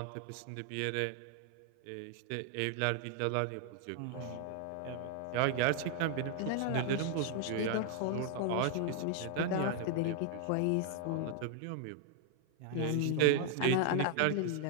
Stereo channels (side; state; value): both; different; correlation 0.00